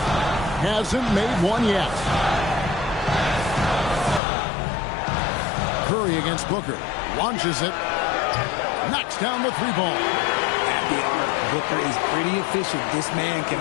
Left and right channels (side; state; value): right; drops out; at 4.2 s